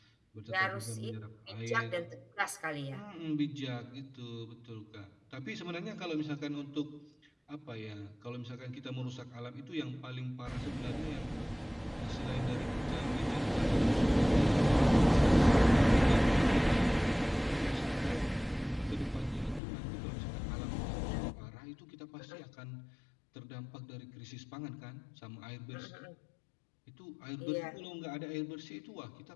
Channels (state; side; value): drops out; right; at 19.6 s